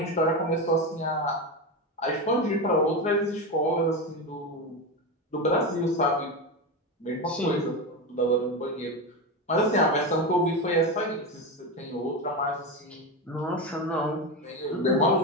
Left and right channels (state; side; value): normal; both; correlation 0.17